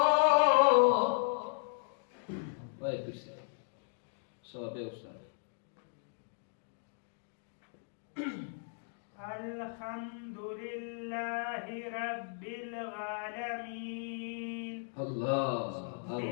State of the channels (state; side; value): silent; right; digital silence